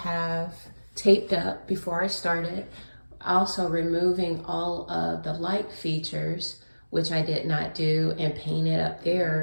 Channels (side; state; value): both; inverted; correlation -1.00